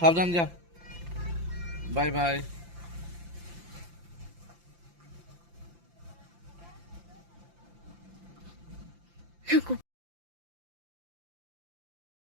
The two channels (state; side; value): late; left; 5.8 ms